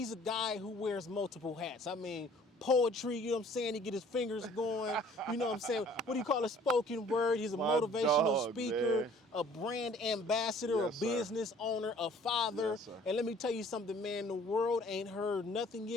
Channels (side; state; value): both; normal; correlation 0.54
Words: a guy who wears multiple hats. I mean, poetry, you know what I'm saying? He get his fingers going, you know what I'm saying? What do you call a spoken word? He's a My motivational dog, speaker, man. a brand ambassador, Yes, a sir. business owner, a father. Yes, sir. And let me tell you something, man, the world ain't heard nothing